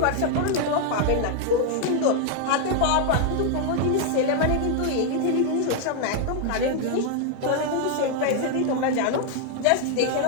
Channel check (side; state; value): both; different; correlation 0.00